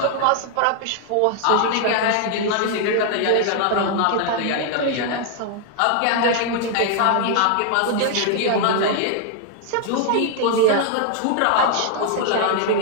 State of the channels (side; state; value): both; different; correlation 0.00